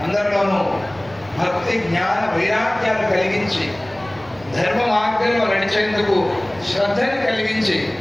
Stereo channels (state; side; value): noise; right; rumble, 25 dB below the sound